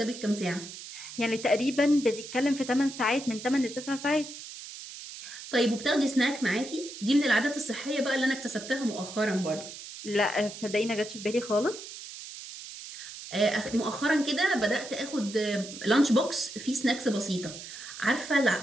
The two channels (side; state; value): right; noise; hiss, 12 dB below the sound